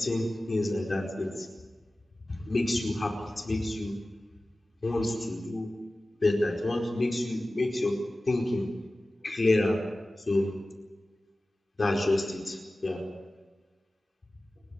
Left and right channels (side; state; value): both; normal; correlation 0.96